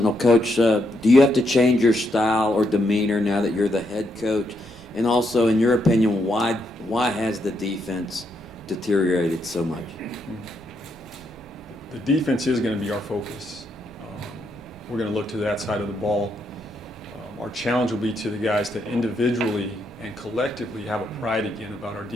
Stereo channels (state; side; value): noise; right; rumble, 27 dB below the sound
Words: Coach, do you have to change your style or demeanor now that you're the head coach? And also, in your opinion, why has the defense deteriorated so much? The defense is going to be our focus. We're going to look to that side of the ball. Our challenge will be to the guys to individually and collectively have a pride again about our